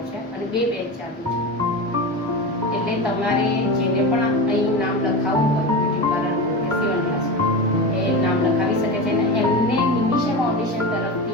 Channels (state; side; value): normal; both; correlation 0.23